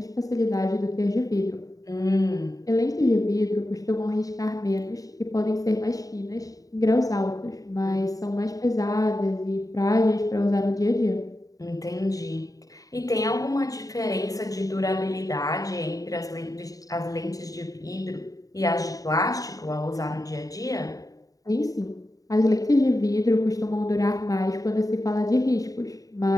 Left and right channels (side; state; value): right; late; 0.17 ms